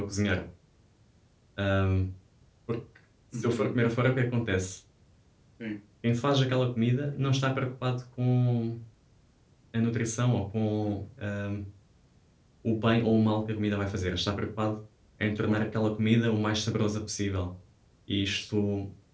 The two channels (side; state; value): both; identical; correlation 1.00